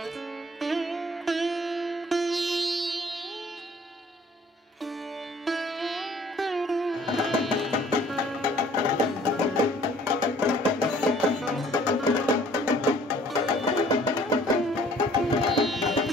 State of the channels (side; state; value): both; normal; correlation 0.56